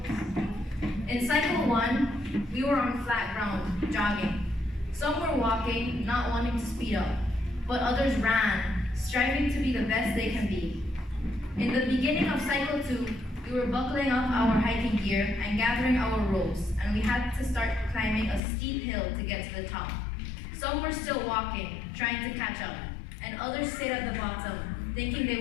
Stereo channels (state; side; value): drops out; right; at 18.4 s